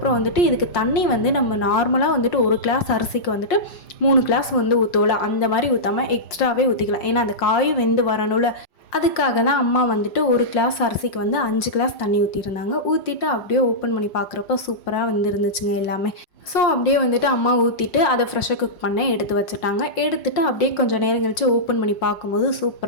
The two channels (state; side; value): late; right; 5.6 ms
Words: வந்துட்டு இதுக்கு தண்ணி வந்து நம்ம நார்மலாக வந்துட்டு ஒரு கிளாஸ் அரிசிக்கு வந்துட்டு 3 கிளாஸ் வந்து ஊற்றுவோம்ல, அந்த மாதிரி ஊற்றாமல் எக்ஸ்ட்ராவே ஊற்றிக்கலாம். ஏன்னா அந்த காயும் வெந்து வரணும்ல, அதுக்காக தான் அம்மா வந்துட்டு ஒரு கிளாஸ் அரிசிக்கு வந்து 5 கிளாஸ் தண்ணி ஊற்றிருந்தாங்க. ஊற்றிட்டு அப்படியே ஓப்பன் பண்ணி பார்க்குறப்ப சூப்பராக வந்து இருந்துச்சுங்க எல்லாமே. ஸோ அப்படியே வந்துட்டு அம்மா ஊற்றிட்டு அதை ஃப்ரெஷ்ஷாக குக் பண்ண எடுத்து வச்சுட்டாங்க. எடுத்துகிட்டு அப்படியே கொஞ்சம் நேரம் கழித்து ஓப்பன் பண்ணி பார்க்கும்போது